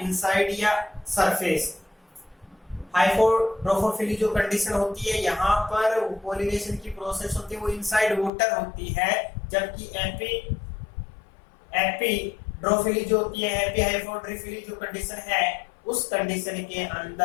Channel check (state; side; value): drops out; right; at 8.3 s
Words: इनसाइड या सरफेस। हाइड्रोफिली जो कंडीशन होती है यहाँ पर पोलिनेशन की प्रोसेस होती है वो इनसाइड वाटर होती है, जबकि एपिड्रोफिली जो होती है, एपी हाइड्रोफिली जो कंडीशन है उस कंडीशन के